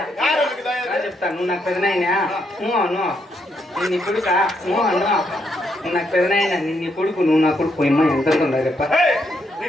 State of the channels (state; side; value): normal; both; correlation 0.77